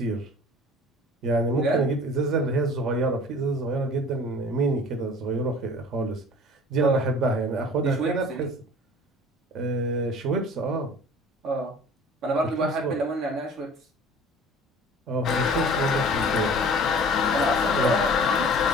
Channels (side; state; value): both; normal; correlation 0.45